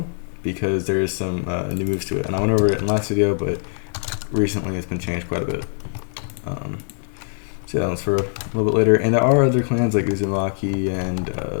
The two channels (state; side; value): silent; right; digital silence